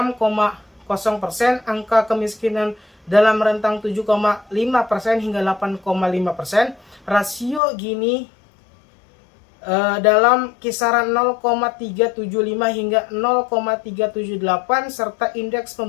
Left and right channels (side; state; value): right; drops out; at 7.6 s